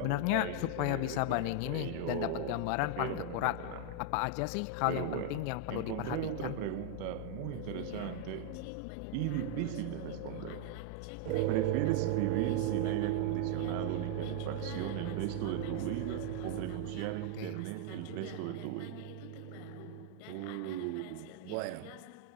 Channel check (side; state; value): both; different; correlation 0.00